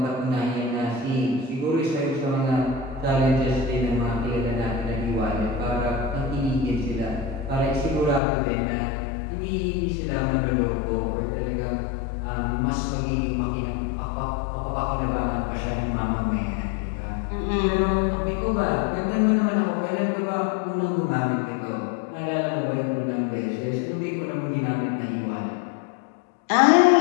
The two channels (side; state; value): right; drops out; at 8.2 s